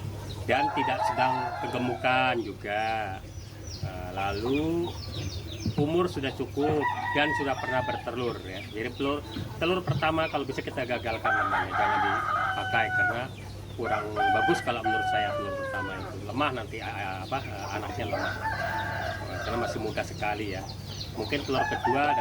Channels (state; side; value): identical; both; correlation 1.00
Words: dan tidak sedang kegemukan juga. Lalu umur sudah cukup dan sudah pernah bertelur ya. Jadi telur pertama kalau bisa kita gagalkan namanya, jangan dipakai karena kurang bagus kalau menurut saya. Telur pertama itu lemah nanti anaknya lemah karena masih muda sekali ya. Mungkin telur kedua